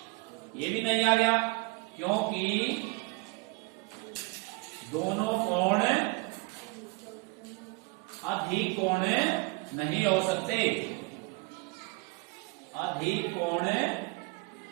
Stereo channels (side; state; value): left; quieter; 26.5 dB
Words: ये भी नहीं आ गया, क्योंकि दोनों कोण अधिक कोण नहीं हो सकते, अधिक कोण